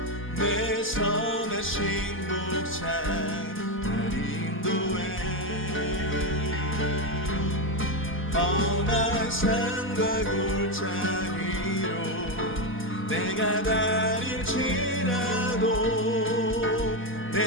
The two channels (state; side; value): late; left; 4.1 ms